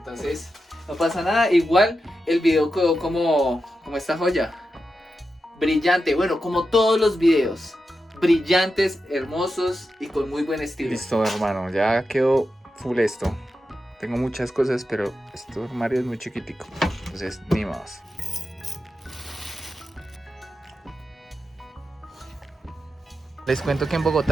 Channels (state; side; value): normal; both; correlation 0.89